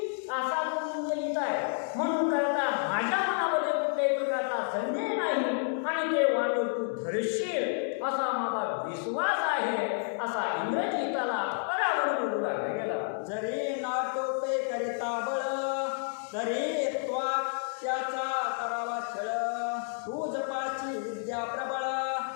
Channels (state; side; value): silent; right; 58 dB below the other